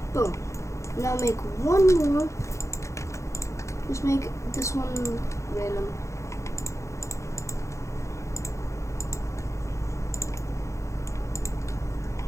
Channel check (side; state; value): right; late; 0.14 ms